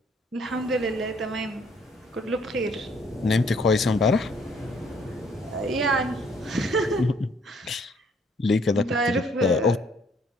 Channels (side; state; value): both; normal; correlation 0.64